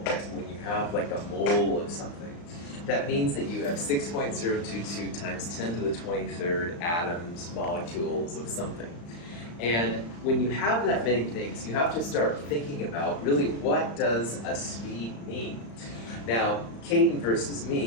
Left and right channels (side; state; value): right; late; 35 ms